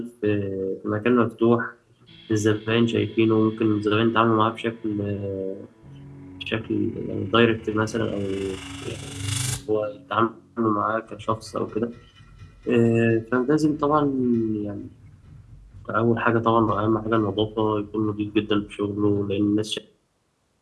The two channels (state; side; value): identical; both; correlation 1.00